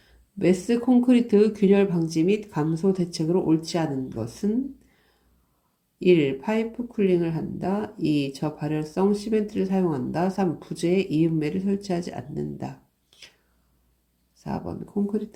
메스 콘크리트 균열 방지 및 감소 대책으로 옳지 않은 것은 1. 파이프 쿨링을 한다. 2. 저발열성 시멘트를 사용한다. 3. 부재에 이음매를 설치하지 않는다. 4번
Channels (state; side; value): identical; both; correlation 1.00